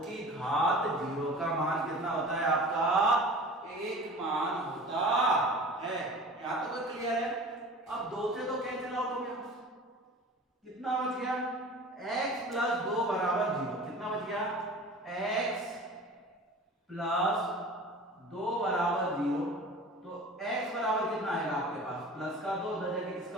की घात 0 का मान कितना होता है आपका 1 मान होता है। यहां तक क्लियर है? अब 2 से 2 कैंसिल आउट हो गया, कितना बच गया x + 2 बराबर 0, कितना बच गया x + 2 बराबर 0, तो x बराबर कितना आएगा आपके पास, प्लस का 2 उधर जाके किसका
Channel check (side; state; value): both; normal; correlation 0.39